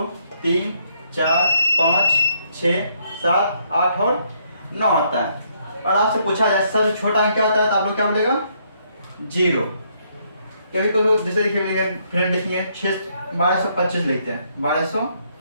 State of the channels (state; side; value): inverted; both; correlation -0.71